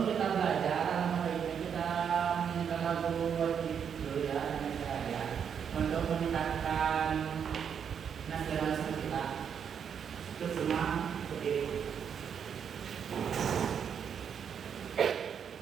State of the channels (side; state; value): left; quieter; 7.6 dB